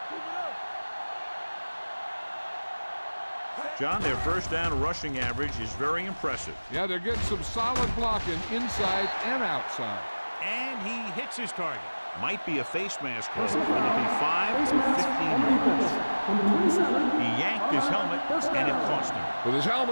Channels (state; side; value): inverted; both; correlation -1.00